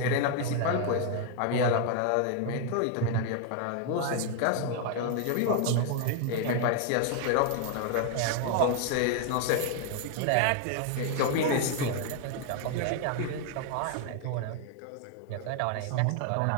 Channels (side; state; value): both; different; correlation 0.00